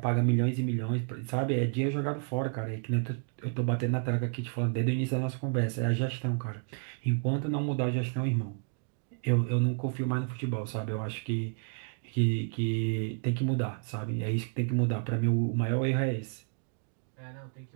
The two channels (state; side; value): silent; left; 57 dB below the other